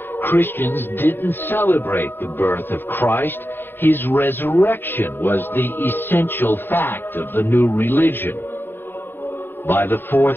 Christians didn't celebrate the birth of Christ. His resurrection was the essential fact of the new religion. By the 4th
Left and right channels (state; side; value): late; right; 0.098 ms